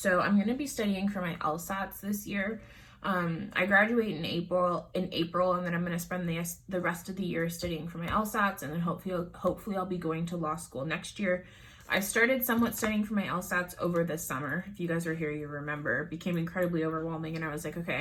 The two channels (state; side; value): identical; both; correlation 1.00